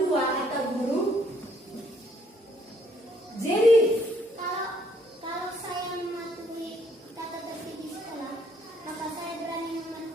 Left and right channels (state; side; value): normal; both; correlation 0.67